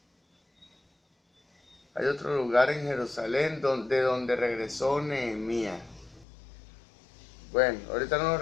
hay otro lugar en Jerusalén de donde regresó Nehemías. Bueno, ahorita no lo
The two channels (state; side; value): drops out; right; at 6.2 s